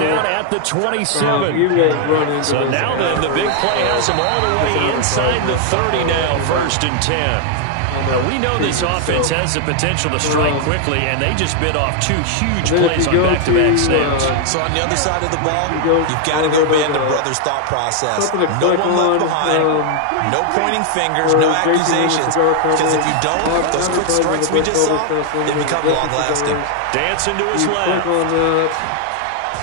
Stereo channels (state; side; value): different; both; correlation 0.00